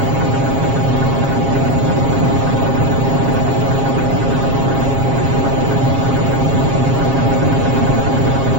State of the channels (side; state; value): left; late; 7.4 ms